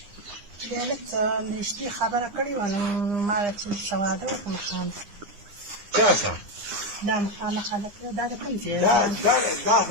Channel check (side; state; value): left; late; 9.8 ms